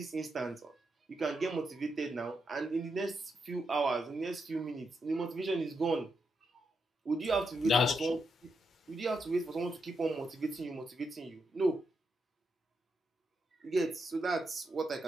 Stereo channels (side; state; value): both; normal; correlation 0.83